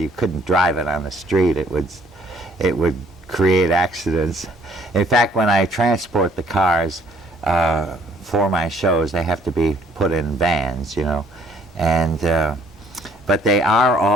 couldn't drive it on the street. It would create accidents. In fact, when I transport the cars for my shows, they have to be put in vans, and but they are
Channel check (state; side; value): normal; both; correlation 0.61